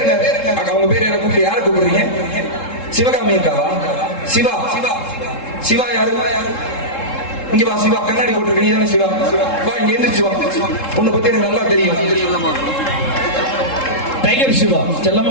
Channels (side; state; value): right; late; 3.7 ms